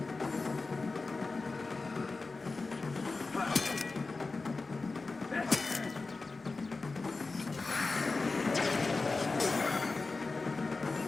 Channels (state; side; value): quieter; right; 3.8 dB